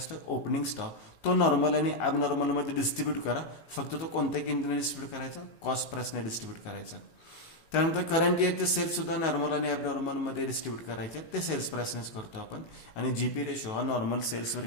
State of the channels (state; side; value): late; right; 18 ms